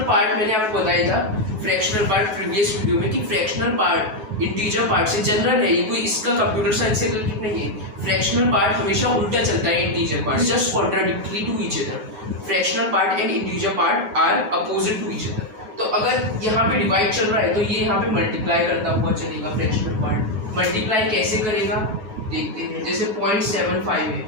पार्ट मैंने आपको बताया था, फ्रैक्शनल पार्ट प्रीवियस वीडियो में, कि फ्रैक्शनल पार्ट इंटीजर पार्ट से जनरल है, ये कोई इसका कंप्यूटर साइंस से रिलेटेड नहीं है। फ्रैक्शनल पार्ट हमेशा उल्टा चलता है integer part, just contradictory to each other. Fractional part and integer part are opposite to each other. तो अगर यहाँ पे डिवाइड चल रहा है तो ये यहाँ पे मल्टीप्लाई करता हुआ चलेगा फ्रैक्शनल पार्ट। मल्टीप्लाई कैसे करेगा देखते हैं। जैसे 0.75 है,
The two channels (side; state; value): left; late; 9.3 ms